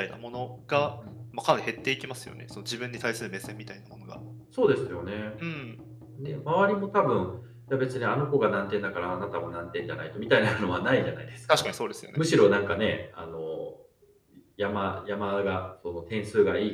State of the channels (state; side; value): identical; both; correlation 1.00